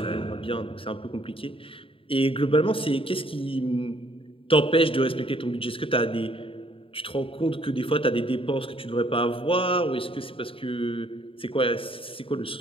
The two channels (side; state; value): right; late; 0.26 ms